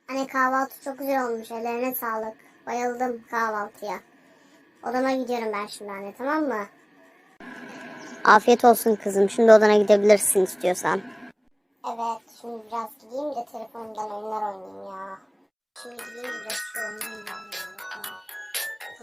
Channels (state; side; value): identical; both; correlation 1.00